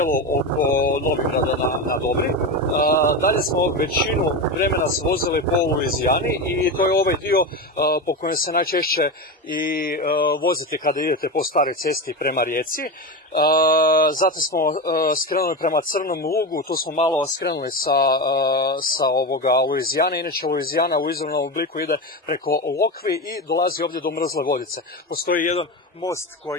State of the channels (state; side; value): normal; both; correlation 0.19